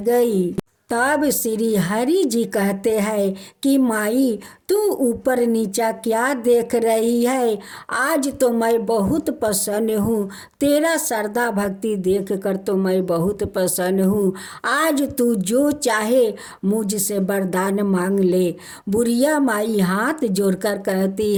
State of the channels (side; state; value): both; identical; correlation 1.00